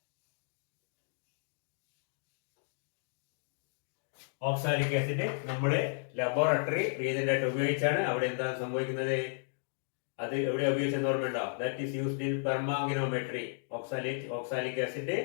Oxalic acid നമ്മുടെ laboratory reagent ആയിട്ട് ഉപയോഗിച്ചാണ്. അവിടെ എന്താണ് സംഭവിക്കുന്നത്? അത് എവിടെ ഉപയോഗിച്ചെന്ന് ഓർമ്മയുണ്ടോ? That is used in permanganometry. Oxalic acid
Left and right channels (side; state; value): right; silent; digital silence